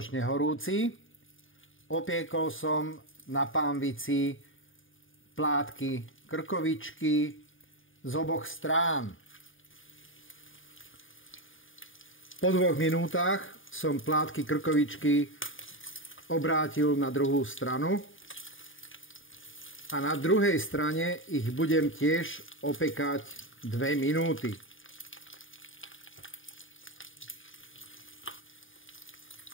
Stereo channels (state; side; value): late; right; 0.58 ms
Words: horúci, opiekol som na pánvici plátky krkovičky z oboch strán. Po 2 minútach som plátky krkovičky obrátil na druhú stranu a na druhej strane ich budem tiež opekať 2 minúty.